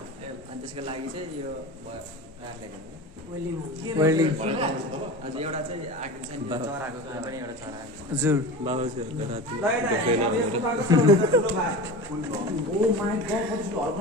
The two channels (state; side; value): normal; both; correlation 0.31